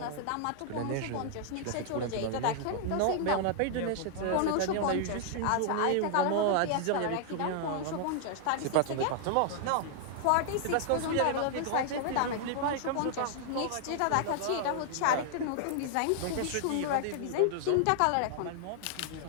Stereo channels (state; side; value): different; both; correlation -0.01